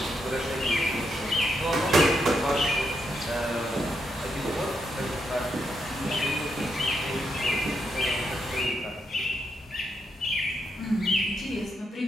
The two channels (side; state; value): both; normal; correlation 0.80